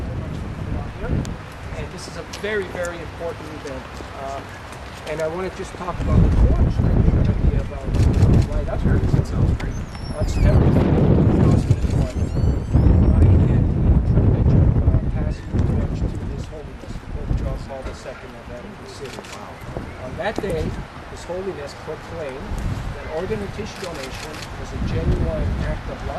And this is a very, very important event. And I want to just talk about the torch that you're going to be about. Why that's where it sounds great. On September 2001, I had the privilege of passing the torch to His Holiness, Pope John Paul II of Vatican City. On that day, the organ and tissue donation was a genuine act of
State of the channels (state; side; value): identical; both; correlation 1.00